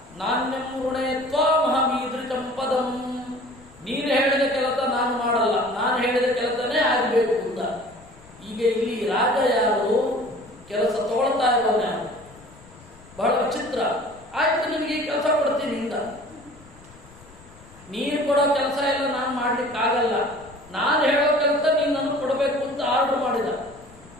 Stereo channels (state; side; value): noise; left; rumble, 23 dB below the sound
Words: ನಾಣ್ಯಂ ಋಣೇ ತ್ವಾಮಹಮೀದೃಶಂ ಪದಂ. ನೀನು ಹೇಳಿದ ಕೆಲಸ ನಾನು ಮಾಡಲ್ಲ, ನಾನು ಹೇಳಿದ ಕೆಲಸನೇ ಆಗಬೇಕು ಅಂತ. ಈಗ ಇಲ್ಲಿ ರಾಜ ಯಾರು, ಕೆಲಸ ತಗೊಳ್ತಾ ಇರೋನು ಯಾರು? ಬಹಳ ವಿಚಿತ್ರ. ಆಯ್ತು, ನಿನಗೆ ಈ ಕೆಲಸ ಕೊಡ್ತೀನಿ ಇಂದ. ನೀನು ಕೊಡೋ ಕೆಲಸ ಎಲ್ಲ ನಾನು ಮಾಡ್ಲಿಕ್ಕಾಗಲ್ಲ, ನಾನು ಹೇಳೋ ಕೆಲಸ ನೀನು ನನಗೆ ಕೊಡಬೇಕು ಅಂತ ಆರ್ಡರ್ ಮಾಡಿದ.